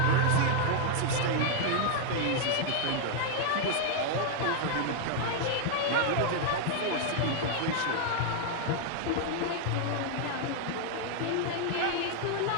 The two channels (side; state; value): both; different; correlation 0.00